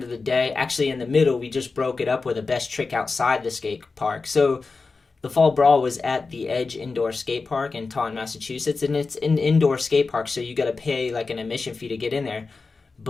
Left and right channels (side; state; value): right; quieter; 4.2 dB